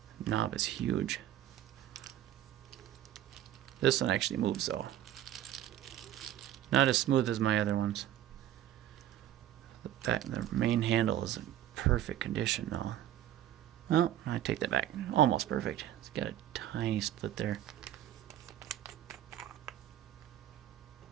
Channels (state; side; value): quieter; left; 12.2 dB